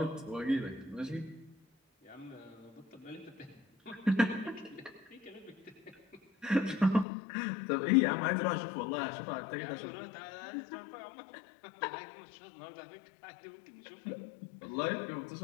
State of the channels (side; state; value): right; drops out; at 7.1 s